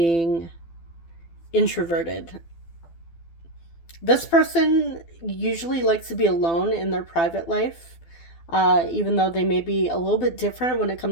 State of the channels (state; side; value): late; right; 12 ms